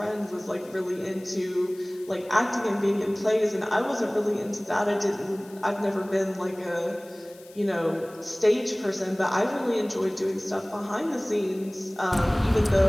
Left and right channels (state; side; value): noise; left; hiss, 24 dB below the sound